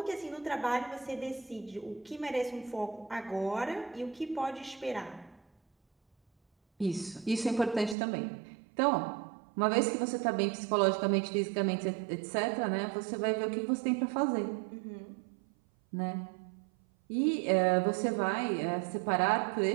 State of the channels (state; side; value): drops out; left; at 8.0 s